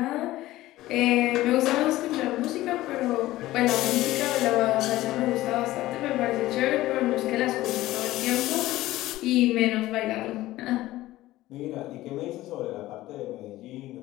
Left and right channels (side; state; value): right; quieter; 16.4 dB